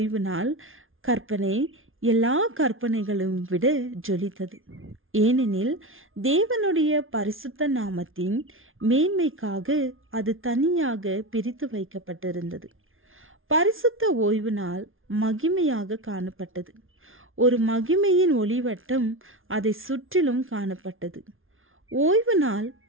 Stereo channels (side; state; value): left; late; 0.59 ms